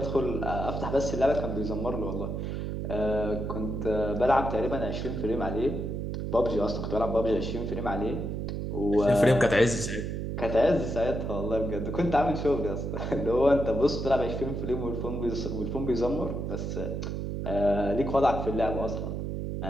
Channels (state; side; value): noise; right; hum, 3 dB below the sound